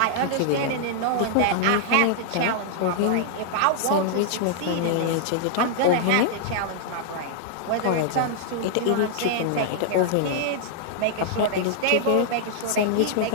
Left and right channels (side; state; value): both; different; correlation -0.01